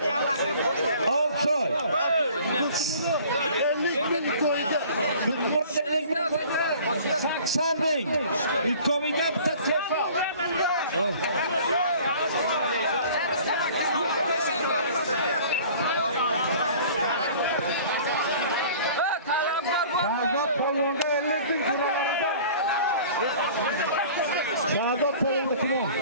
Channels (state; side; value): inverted; both; correlation -0.48